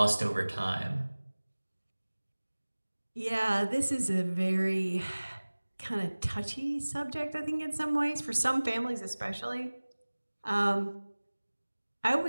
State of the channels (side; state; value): both; inverted; correlation -1.00